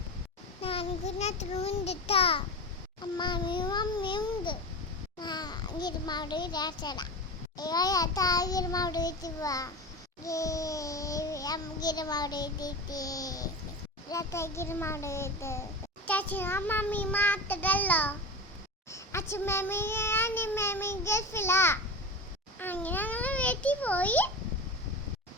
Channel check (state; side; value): normal; both; correlation 0.26